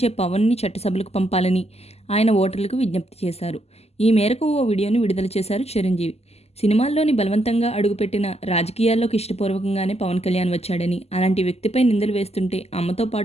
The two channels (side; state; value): right; late; 0.30 ms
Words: పవన్‌ని చట్టసభలకు పంపాలని ఆయన ఓటర్లకు విజ్ఞప్తి చేశారు. ఈ మేరకు ఓ వీడియోని విడుదల చేశారు చిరంజీవి. సినిమాల్లోని బలవంతంగా అడుగుపెట్టిన రాజకీయాల్లోకి ఇష్టపూర్వకంగానే పవన్ కళ్యాణ్ వచ్చాడని, అలాంటి వ్యక్తిపై నిందలు వేస్తుంటే అమ్మతో